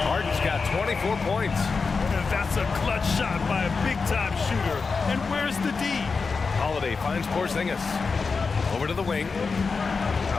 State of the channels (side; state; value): right; quieter; 4.7 dB